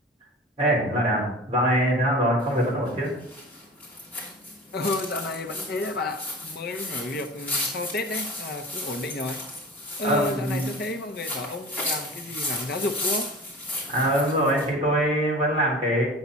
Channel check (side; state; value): both; normal; correlation 0.37